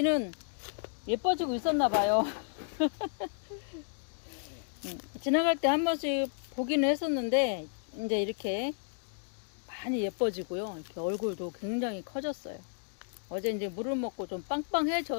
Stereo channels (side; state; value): right; silent; digital silence